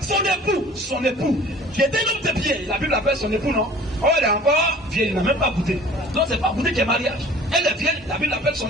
Son époux. Qui était un homme de pied. La Bible appelle son époux, non? Oh, elle est encore vieille, il n'a même pas goûté. Donc c'est pas goûté qu'il y a mariage. Elle est vieille, la Bible appelle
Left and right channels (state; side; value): normal; both; correlation 0.47